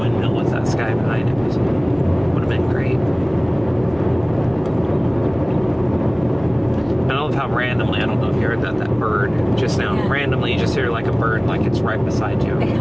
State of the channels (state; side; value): noise; right; hum, 20 dB below the sound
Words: with that sky behind it would have been great. I love how randomly, I don't know if you heard that bird just now, Yeah. randomly you just hear like a bird like it's right beside you